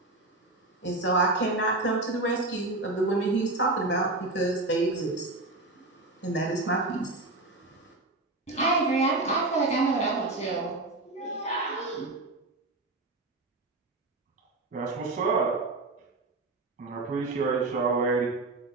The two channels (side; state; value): left; quieter; 3.0 dB